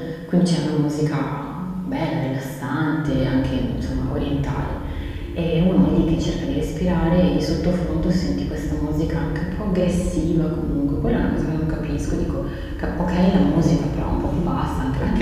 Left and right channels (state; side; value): identical; both; correlation 1.00